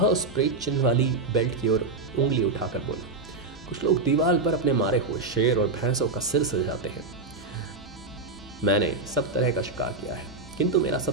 उस प्रेत चिन्ह वाली बेल्ट की ओर उंगली उठाकर बोला, कुछ लोग दीवार पर अपने मारे हुए शेर और भैंसों का सिर सजाते हैं। मैंने सब तरह का शिकार किया है, किंतु मेरा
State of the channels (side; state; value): left; quieter; 3.6 dB